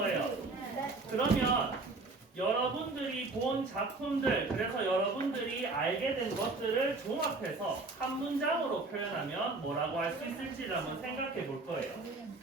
그러면 여러분들이 본 작품들, 그래서 여러분들이 알게 된 것들을 종합해서 한 문장으로 표현하면 뭐라고 할 수 있을지를 한번 생각해 볼 거예요.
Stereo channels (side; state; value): left; quieter; 3.5 dB